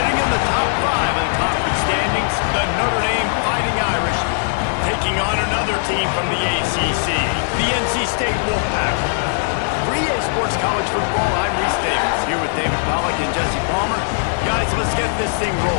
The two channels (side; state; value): right; silent; digital silence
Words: in the top 5 of the conference standings, the Notre Dame Fighting Irish, taking on another team from the ACC, the NC State Wolfpack. For EA Sports College Football, I'm Reese Davis, here with David Pollack and Jesse Palmer. Guys, let's get this thing